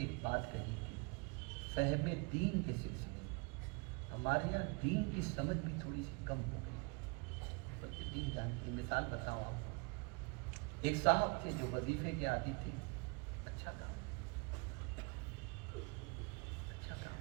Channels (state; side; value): quieter; left; 30.3 dB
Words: بات کہی تھی, فہم دین کے سلسلے میں ہمارے یہاں دین کی سمجھ بھی تھوڑی سی کم ہو گئی. بلکہ دین جانتی. مثال بتاؤں آپ کو, ایک صاحب تھے جو وظیفے کے عادی تھے. اچھا کام, اچھا کام.